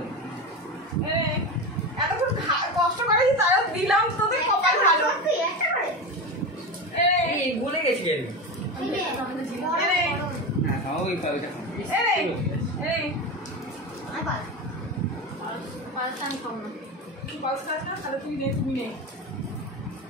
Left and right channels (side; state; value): both; normal; correlation 0.22